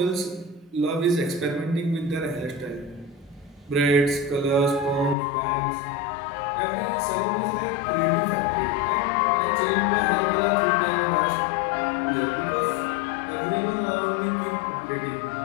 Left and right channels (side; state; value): right; drops out; at 5.2 s